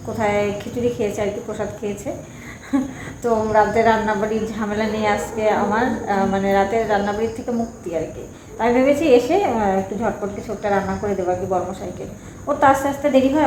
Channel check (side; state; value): both; identical; correlation 1.00